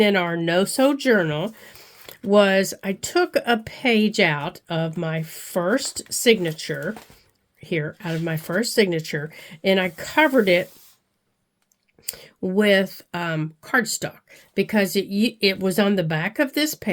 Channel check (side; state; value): both; identical; correlation 1.00